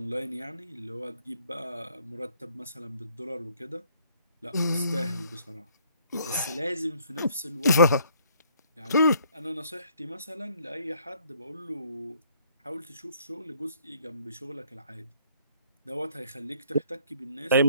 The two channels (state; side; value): inverted; both; correlation -0.63